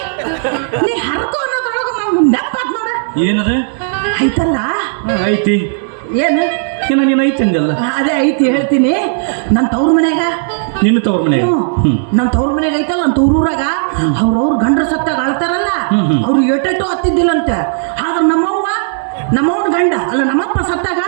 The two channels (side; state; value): left; silent; digital silence